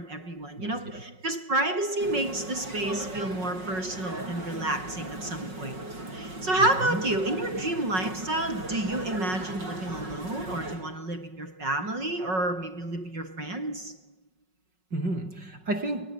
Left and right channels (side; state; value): left; late; 5.4 ms